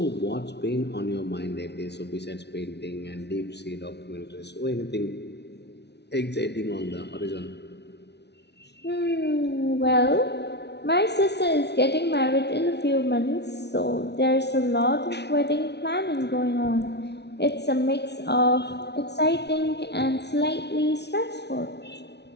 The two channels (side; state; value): right; late; 0.50 ms